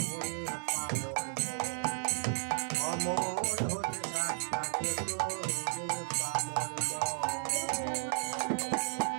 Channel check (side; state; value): left; silent; 55 dB below the other